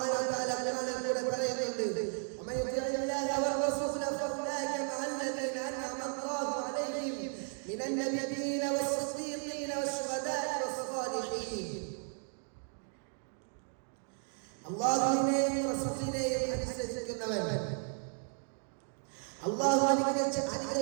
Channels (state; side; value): silent; left; 55 dB below the other